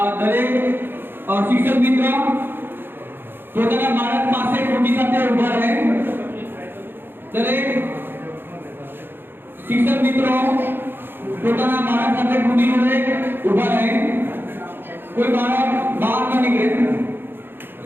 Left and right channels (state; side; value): late; left; 0.10 ms